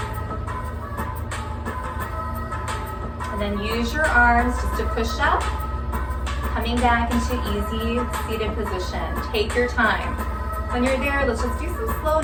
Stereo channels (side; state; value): both; identical; correlation 1.00